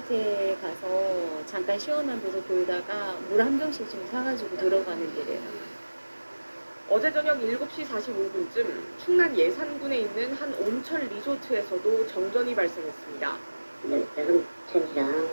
가서 잠깐 시원한 데서 돌다가 물 한 병씩 좀 사가지고 들어가는 길이에요. 어제 저녁 7시 45분쯤 충남 예산군에 있는 한 온천 리조트에서도 정전이 발생했습니다. 온천이랑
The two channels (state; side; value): inverted; both; correlation -1.00